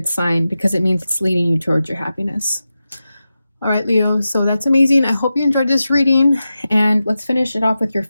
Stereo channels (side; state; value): both; inverted; correlation -0.92